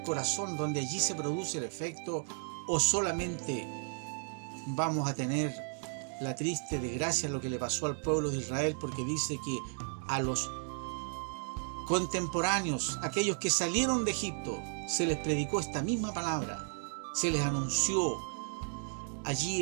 corazón donde allí se produce el efecto? ¿O solamente vamos a tener la triste desgracia, lo que le pasó al pueblo de Israel? Porque dice que a los contemporáneos, aquellos que salieron de Egipto, se les predicó esta misma palabra, se les anunció allí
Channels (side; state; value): left; silent; 55 dB below the other